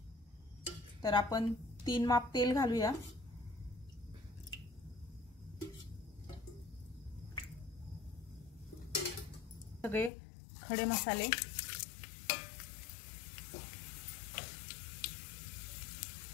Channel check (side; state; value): right; drops out; at 10.1 s